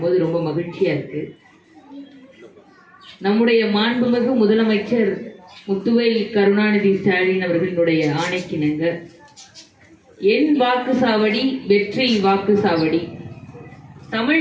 ரொம்ப மகிழ்ச்சியா இருக்கு. நம்முடைய மாண்புமிகு முதலமைச்சர் முத்துவேல் கருணாநிதி ஸ்டாலின் அவர்களுடைய ஆணைக்கிணங்க என் வாக்குசாவடி வெற்றி வாக்குசாவடி,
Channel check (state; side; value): identical; both; correlation 1.00